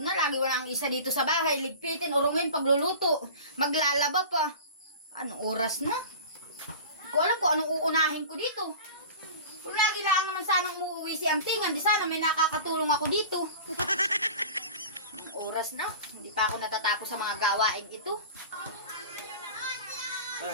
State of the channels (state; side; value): inverted; both; correlation -0.36